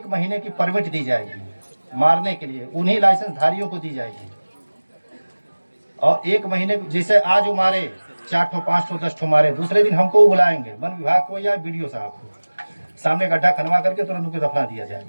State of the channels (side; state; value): both; inverted; correlation -1.00